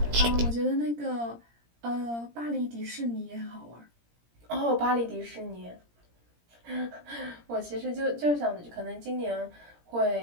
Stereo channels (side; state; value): left; late; 17 ms